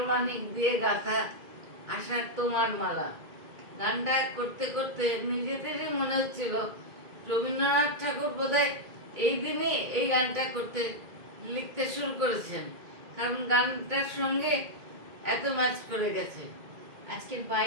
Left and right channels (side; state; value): left; late; 2.2 ms